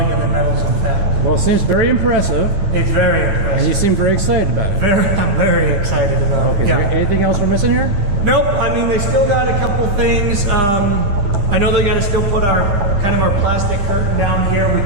metals and fab. Well, it seems very impressive. It's very impressive. And you seem very excited about it. I'm very excited about it. Okay, Yeah. is there anything else we're missing here? Nope. I mean, they still got a couple things. I know they got to still put our plastic curtain down here. We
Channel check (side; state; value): left; late; 9.9 ms